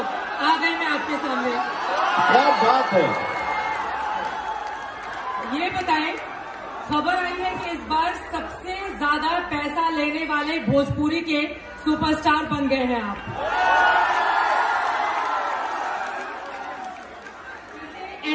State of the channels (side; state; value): both; identical; correlation 1.00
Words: गए मैं आपके सामने। क्या बात है। ये बताएं, खबर आई है कि इस बार सबसे ज्यादा पैसा लेने वाले भोजपुरी के सुपरस्टार बन गए हैं आप।